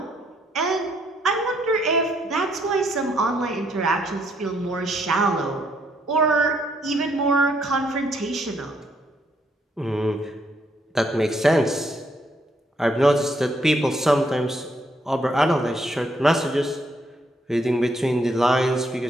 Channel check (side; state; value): both; normal; correlation 0.72